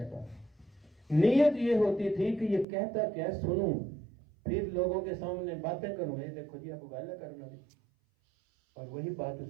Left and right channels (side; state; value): left; drops out; at 2.7 s